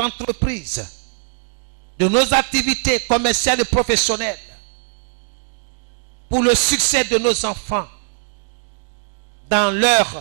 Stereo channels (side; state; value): left; silent; digital silence